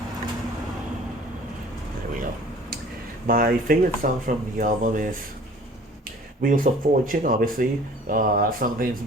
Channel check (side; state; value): both; normal; correlation 0.49